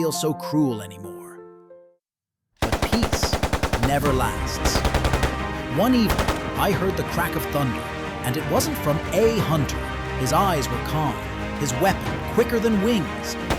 so cruel anymore. But peace never lasts. One evening, I heard the crack of thunder, and it wasn't from a hunter. His eyes were calm, his weapon quicker than wings.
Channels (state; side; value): identical; both; correlation 1.00